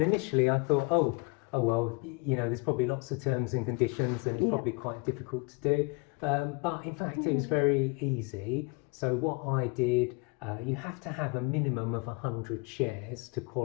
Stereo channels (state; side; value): quieter; right; 28.4 dB